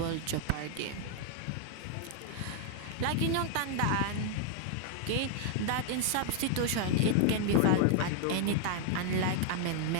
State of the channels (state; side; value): different; both; correlation 0.00